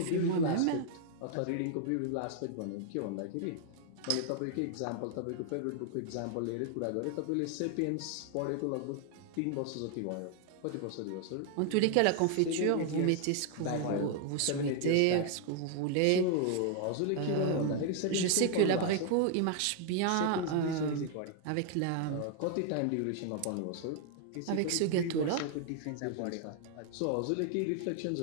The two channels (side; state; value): both; different; correlation 0.00